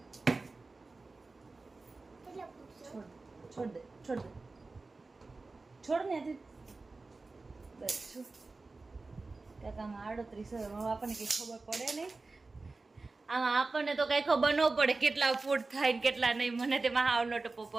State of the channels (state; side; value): quieter; left; 3.6 dB